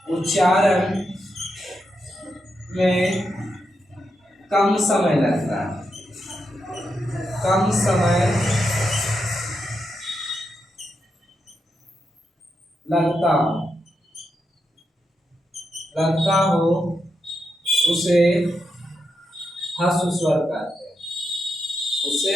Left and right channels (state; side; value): normal; both; correlation 0.84